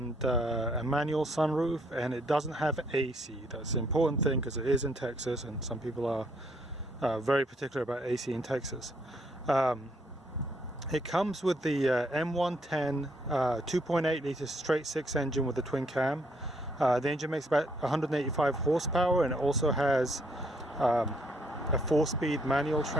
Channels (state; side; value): normal; both; correlation 0.70